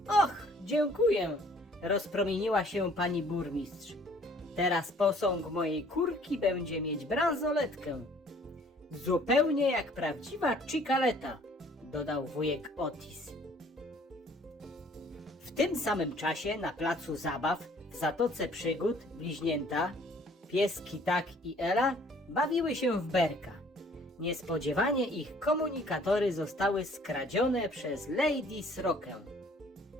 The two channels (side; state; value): both; normal; correlation 0.57